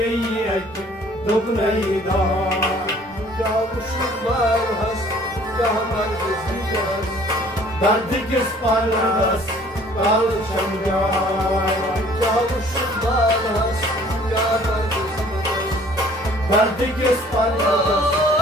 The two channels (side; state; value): both; normal; correlation 0.55